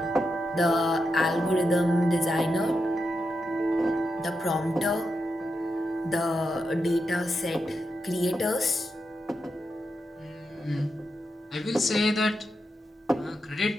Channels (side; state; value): both; normal; correlation 0.86